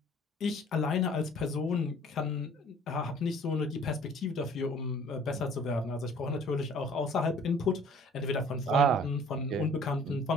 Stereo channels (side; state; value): both; normal; correlation 0.52